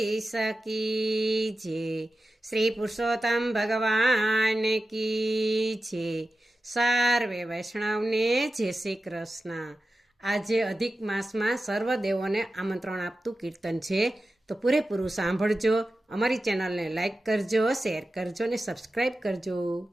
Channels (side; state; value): both; normal; correlation 0.93